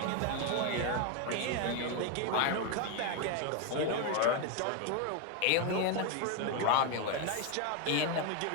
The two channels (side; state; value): both; different; correlation 0.01